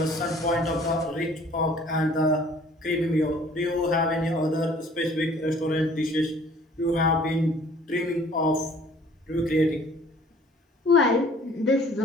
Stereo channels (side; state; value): both; normal; correlation 0.54